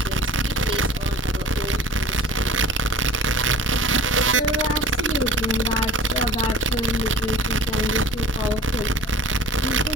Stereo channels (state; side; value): normal; both; correlation 0.43